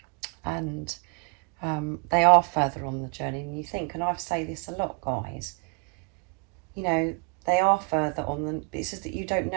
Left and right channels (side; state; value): left; quieter; 38.5 dB